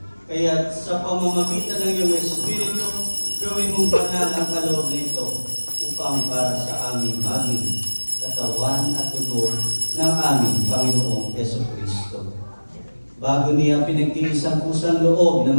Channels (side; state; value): both; inverted; correlation -1.00